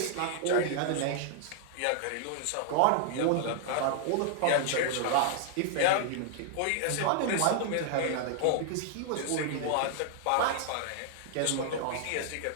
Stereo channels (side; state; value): both; different; correlation -0.01